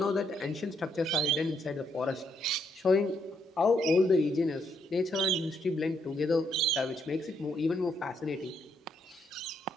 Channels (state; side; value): normal; both; correlation 0.75